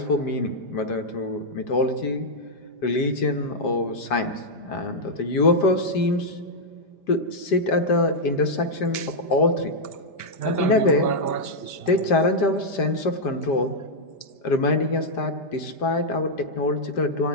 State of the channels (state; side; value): late; right; 5.0 ms